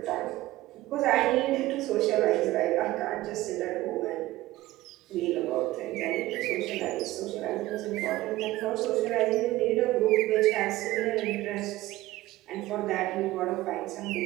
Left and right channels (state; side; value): quieter; left; 17.2 dB